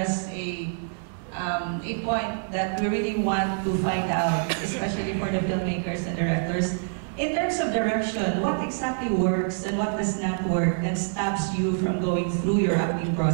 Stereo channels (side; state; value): left; silent; 61 dB below the other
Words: a point that we really want to find out, especially for the filmmakers and directors. In terms of direction, what exactly works and what does not work and stops you from going through your acting